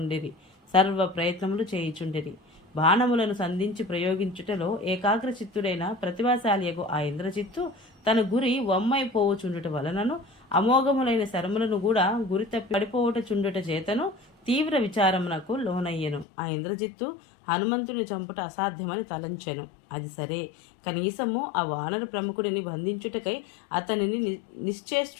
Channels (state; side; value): drops out; right; at 16.2 s